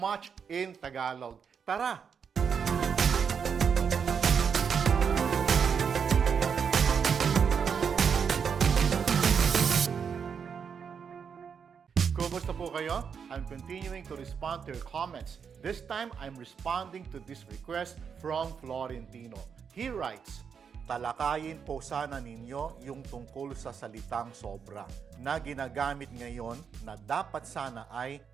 in Tagalog. Tara! Kumusta po kayo? I'm continuing to respond to your comments. This time, I'm responding to this request from Florentino. He writes, talakayin po sana ninyo yung tungkol sa salitang sobra na ginagamit ngayon na dapat sana ay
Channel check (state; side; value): quieter; left; 6.7 dB